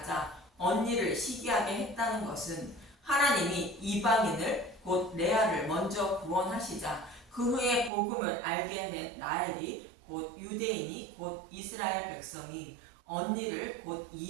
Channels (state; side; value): drops out; left; at 7.9 s